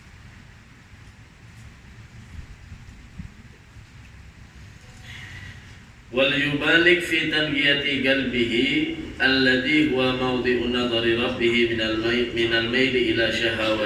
وليبالغ في تنقية قلبه الذي هو موضع نظر ربه من الميل إلى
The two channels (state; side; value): identical; both; correlation 1.00